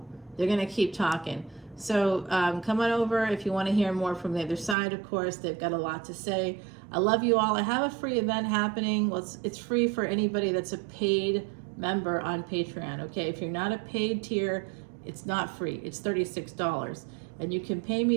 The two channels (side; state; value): left; drops out; at 4.8 s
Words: they're going to keep talking. So come on over if you want to hear more from the other side. Of course, they've got a lot to say. I love you all. I have a free event happening. Well, it's free for anybody that's a paid member on Patreon. Okay, if you're not a paid tier, it's not free. It's $36, and you can pay me